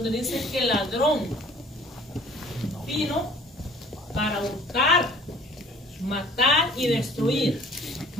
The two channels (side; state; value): both; normal; correlation 0.53